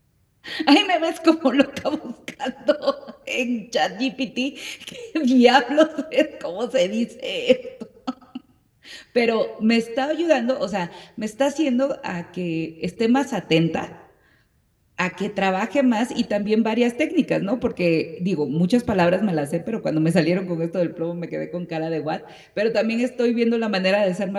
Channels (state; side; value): identical; both; correlation 1.00